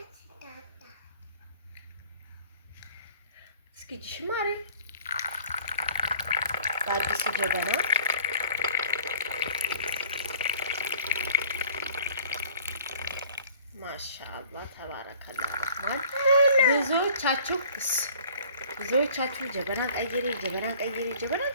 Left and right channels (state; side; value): inverted; both; correlation -0.52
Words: እስኪ ጅሽማሪ አዲስ ጀበና ማሻአላህ ተባረከላህ። ብዙዎቻችሁ ጀበና